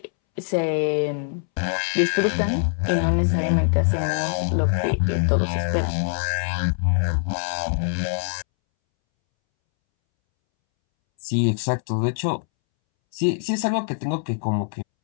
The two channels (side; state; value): right; silent; 63 dB below the other